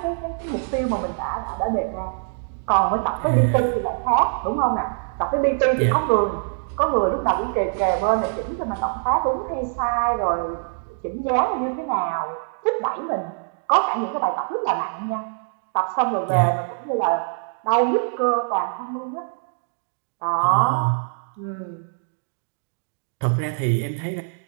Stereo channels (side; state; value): left; silent; digital silence